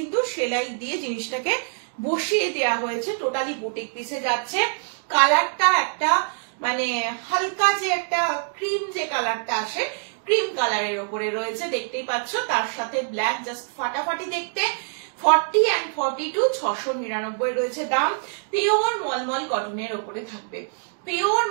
সেলাই দিয়ে জিনিসটাকে বসিয়ে দেওয়া হয়েছে। টোটালি বুটিক পিসে যাচ্ছে। কালারটা একটা মানে হালকা যে একটা ক্রিম যে কালারটা আসে, ক্রিম কালারের উপরে রয়েছে, দেখতেই পাচ্ছ। তার সাথে ব্ল্যাক, জাস্ট ফাটাফাটি দেখতে। 40 and 42, 699 রয়েছে দাম। পিওর মলমল কটনের উপরে থাকবে, পিওর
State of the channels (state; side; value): silent; left; digital silence